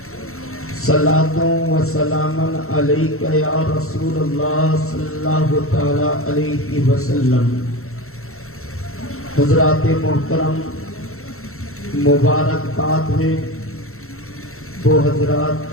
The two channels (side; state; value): right; late; 0.63 ms